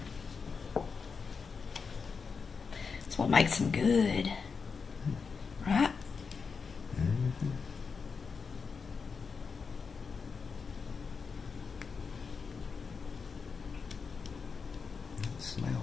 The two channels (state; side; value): quieter; right; 5.3 dB